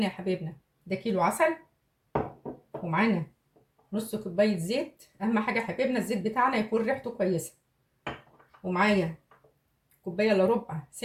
يا حبايبنا ده كيلو عسل، ومعانا نص كوبايه زيت. اهم حاجه يا حبايبنا الزيت بتاعنا يكون ريحته كويسه. ومعايا كوبايه الا ربع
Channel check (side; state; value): both; identical; correlation 1.00